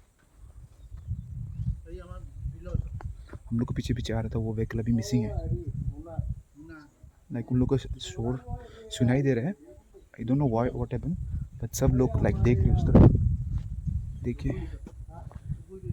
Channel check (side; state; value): both; identical; correlation 1.00